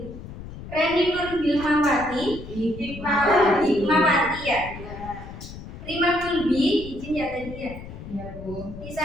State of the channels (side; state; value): left; noise; rumble, 12 dB below the sound